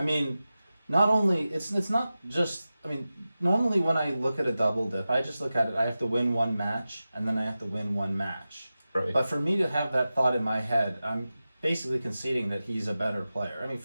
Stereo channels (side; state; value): both; inverted; correlation -0.94